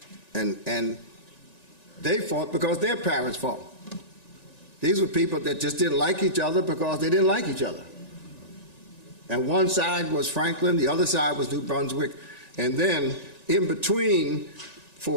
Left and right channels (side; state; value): right; late; 1.9 ms